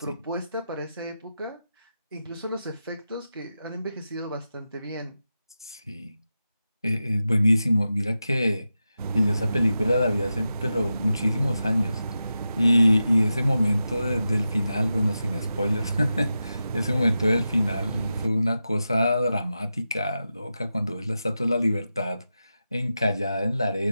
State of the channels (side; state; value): both; inverted; correlation -0.91